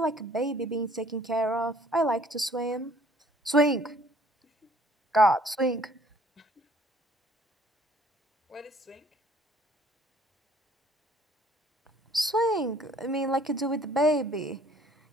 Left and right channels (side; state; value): both; normal; correlation 0.58